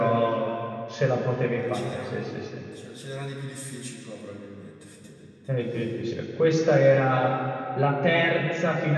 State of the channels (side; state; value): both; identical; correlation 1.00